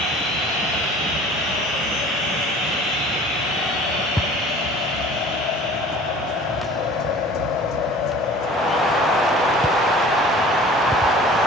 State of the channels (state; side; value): normal; both; correlation 0.46